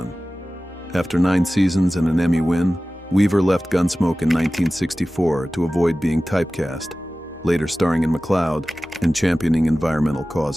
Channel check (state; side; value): normal; both; correlation 0.96